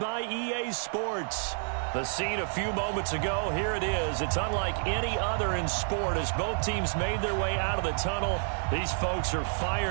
EA Sports. The scene a few moments ago, here it is. It's unlike any other in sport as both teams made their way out of the tunnel. These folks are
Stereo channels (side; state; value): left; silent; digital silence